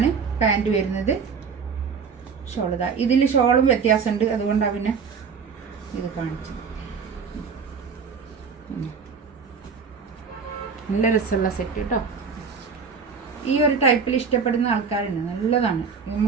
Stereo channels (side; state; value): left; quieter; 5.7 dB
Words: പാൻറ്റ് വരുന്നത്. ഷോൾ ഇതാ, ഇതിൽ ഷോളും വ്യത്യാസമുണ്ട്, അതുകൊണ്ടാണ് പിന്നെ ഇത് കാണിച്ചത്. നല്ല രസമുള്ള സെറ്റ് കേട്ടോ. ഈ ഒരു ടൈപ്പിൽ ഇഷ്ടപ്പെടുന്ന ആൾക്കാരുണ്ട്, നല്ലതാണ്.